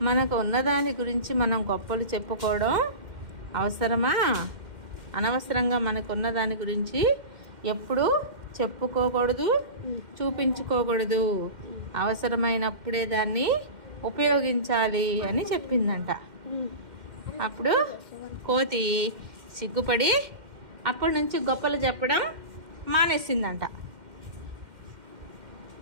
మనకు ఉన్నదాని గురించి మనం గొప్పలు చెప్పుకోవడం అవసరమా? అనవసరంగా మనకున్న దాని గురించి ఎప్పుడు చెప్పుకోకూడదు, చూపించుకోకూడదు, అవసరమైనప్పుడే దాన్ని ఉపయోగించాలి అని చెప్పిందంట. అప్పుడు కోతి సిగ్గుపడి అప్పటి నుంచి గొప్పలు చెప్పడం మానేసిందంట.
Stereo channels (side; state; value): left; late; 2.1 ms